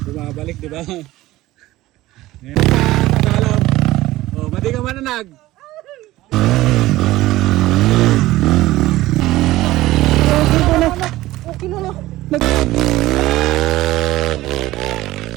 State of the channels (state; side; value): quieter; left; 16.9 dB